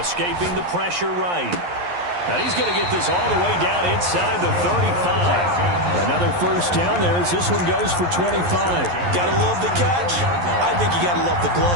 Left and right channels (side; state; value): left; late; 11 ms